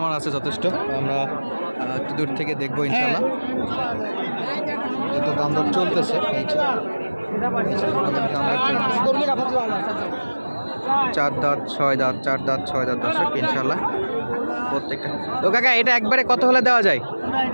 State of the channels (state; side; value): inverted; both; correlation -1.00